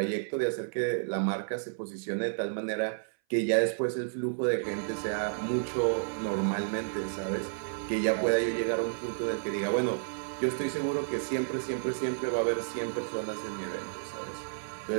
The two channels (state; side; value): silent; left; 57 dB below the other